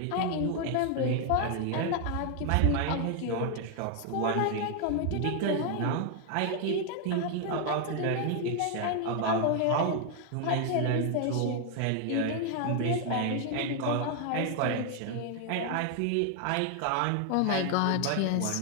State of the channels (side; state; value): both; different; correlation 0.00